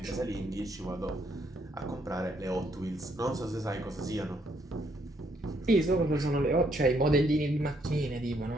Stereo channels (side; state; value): both; normal; correlation 0.72